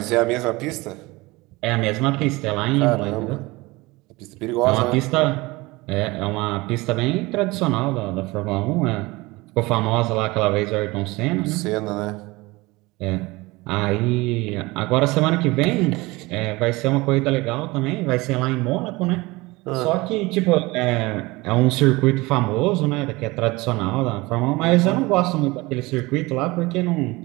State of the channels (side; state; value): left; quieter; 22.3 dB